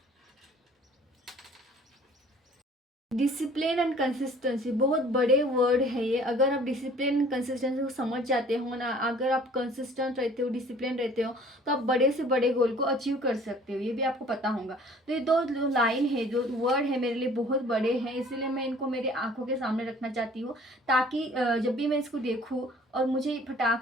डिसिप्लिन एंड कंसिस्टेंसी बहुत बड़े वर्ड है ये। अगर आप डिसिप्लिन एंड कंसिस्टेंसी को समझ जाते हो ना, अगर आप कंसिस्टेंट रहते हो, डिसिप्लिन रहते हो, तो आप बड़े से बड़े गोल को अचीव कर सकते हो। ये भी आपको पता होगा। तो ये 2 लाइन है, जो वर्ड है, मेरे लिए बहुत बड़े हैं, इसीलिए मैं इनको मेरे आंखों के सामने रखना चाहती हूँ, ताकि जब भी मैं इसको देखूँ और मुझे फटाक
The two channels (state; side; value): normal; both; correlation 0.52